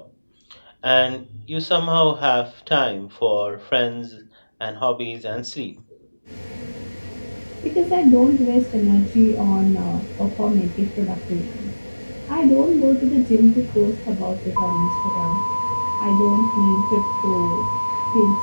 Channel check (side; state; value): both; inverted; correlation -1.00